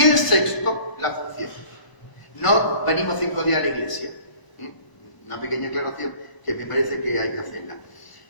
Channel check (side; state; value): right; late; 1.0 ms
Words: el sexto, la función. No venimos 5 días a la iglesia. Una pequeña aclaración que me parece que hay que hacerla.